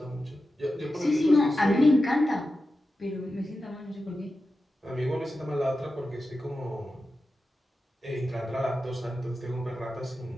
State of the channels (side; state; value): both; normal; correlation 0.92